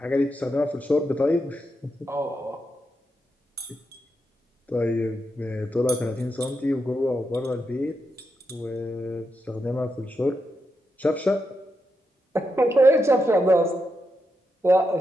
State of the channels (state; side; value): normal; both; correlation 0.85